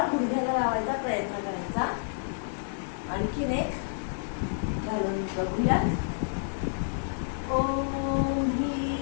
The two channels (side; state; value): right; silent; digital silence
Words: गुडघ्याला लावायचा प्रयत्न करायचा. आणखीन एक घालून बघूयात. ओम